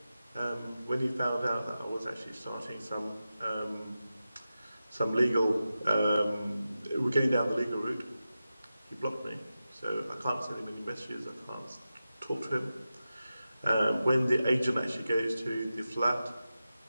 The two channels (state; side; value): inverted; both; correlation -0.92